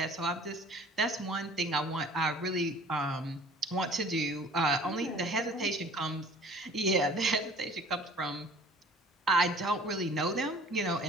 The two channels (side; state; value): both; normal; correlation 0.49